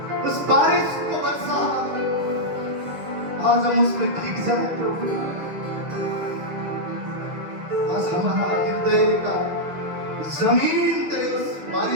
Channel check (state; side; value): late; left; 6.6 ms